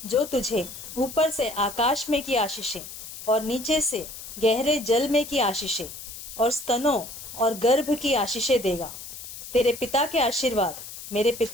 जो तुझे ऊपर से आकाश में की आशीषें और नीचे से गहरे जल में की आशीषें और स्तनों और गर्भ की आशीषें देगा। तेरे पिता के आशीर्वाद मेरे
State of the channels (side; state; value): left; noise; hiss, 12 dB below the sound